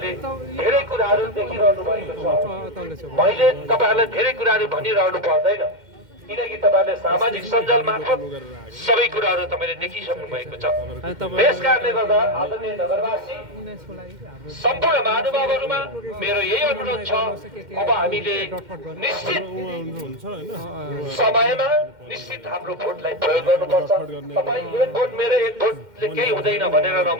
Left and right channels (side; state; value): left; late; 2.1 ms